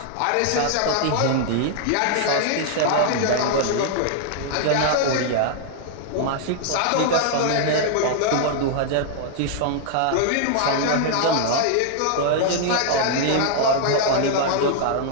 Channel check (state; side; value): different; both; correlation 0.00